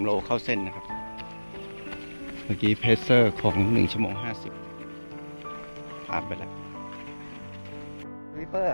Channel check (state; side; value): inverted; both; correlation -1.00